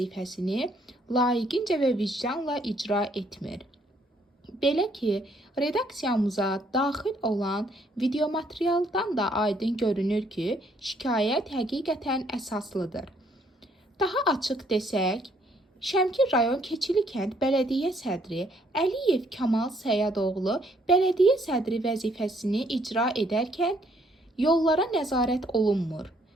layiqincə və vicdanla icra etmir. Belə ki, redaksiyamıza daxil olan videomaterialdan da aydın görünür ki, şikayət həqiqətən əsaslıdır. Daha açıq desək, Şəmkir rayon Keçili kənd bələdiyyə sədri Əliyev Kamal Səyadoğlu bələdiyyə sədri vəzifəsini icra edərkən yollara nəzarət olunmur.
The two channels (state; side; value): normal; both; correlation 0.67